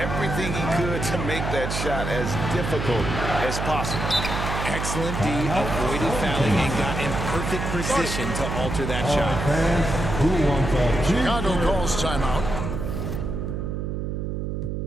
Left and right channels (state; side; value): noise; right; hum, 3 dB below the sound